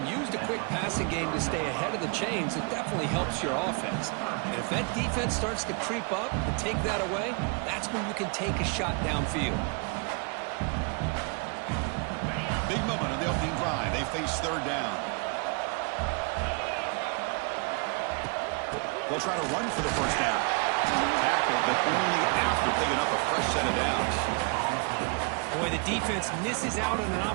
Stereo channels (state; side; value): quieter; left; 35.0 dB